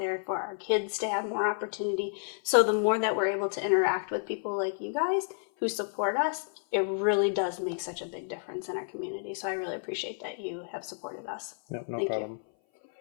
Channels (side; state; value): right; silent; 57 dB below the other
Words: for our kids to have more opportunity. So the more that we're able to interact with people like you guys who support us, it really does make such a big difference in our community. So I really appreciate that you have supported us. No Thank problem. You.